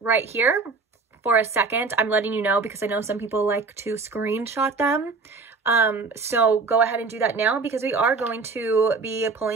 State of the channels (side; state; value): left; quieter; 4.3 dB